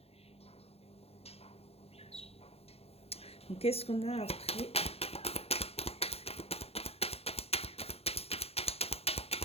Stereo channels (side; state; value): right; late; 0.29 ms